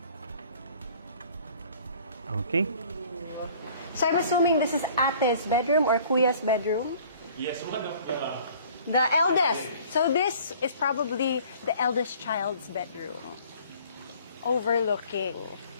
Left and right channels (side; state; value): both; inverted; correlation -0.52